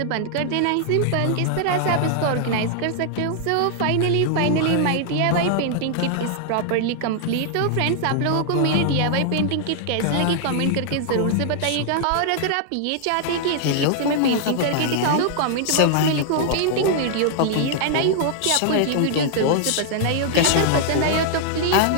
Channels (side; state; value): both; different; correlation 0.00